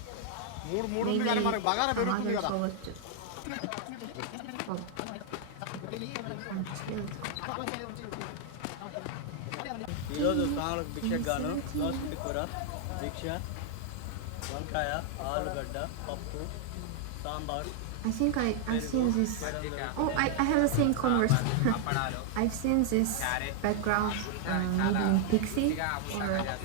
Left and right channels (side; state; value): both; different; correlation 0.00